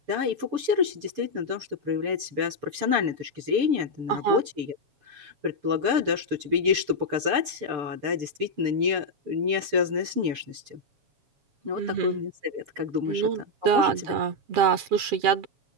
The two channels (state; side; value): late; left; 6.7 ms